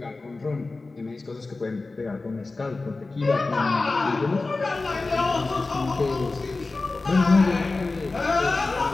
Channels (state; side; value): quieter; right; 3.5 dB